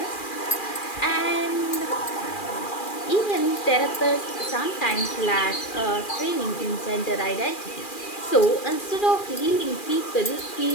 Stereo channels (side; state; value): right; late; 2.4 ms